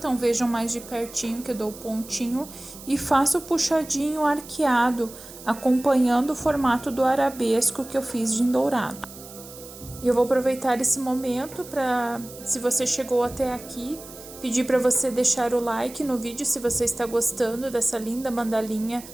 vejam mais de pertinho que eu dou o pontinho e faço o puxadinho arqueado, acompanhando o formato do arabesco que eu fiz de dourado. E eu vou aproveitar esse momento para, se você chegou até aqui, pedir para você deixar o like no vídeo se você está gostando dessa linda mandalinha.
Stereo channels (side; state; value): right; noise; hiss, 16 dB below the sound